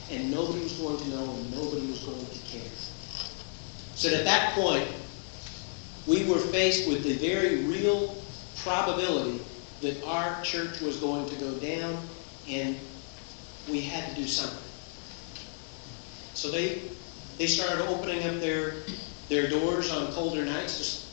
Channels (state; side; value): silent; right; 55 dB below the other